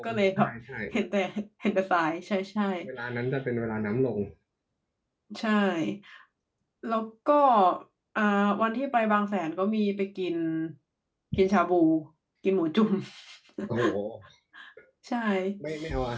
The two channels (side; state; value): both; identical; correlation 1.00